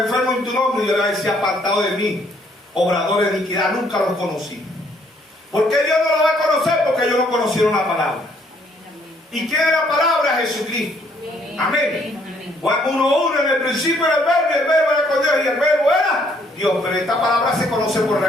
enfermos en tu nombre. Y yo le voy a decir: apartado de mí, obradores de iniquidad, nunca los conocí. ¿Por qué Dios no lo va a conocer? Porque ellos no conocieron la palabra. ¿Y quién es la palabra? Jesucristo. Amén. Juan 1:1: en el principio era el verbo, y el verbo era con Dios, y el verbo era Dios. Pero esta palabra se conoce por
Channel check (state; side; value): normal; both; correlation 0.66